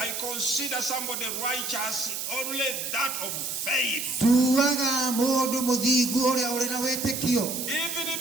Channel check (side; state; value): right; noise; hiss, 4 dB below the sound